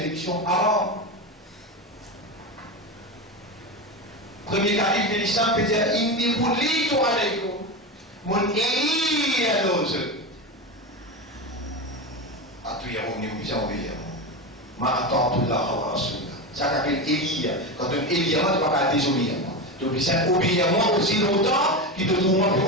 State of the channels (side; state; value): both; normal; correlation 0.19